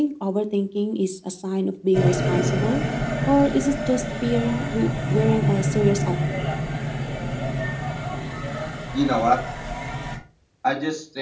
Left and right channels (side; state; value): both; identical; correlation 1.00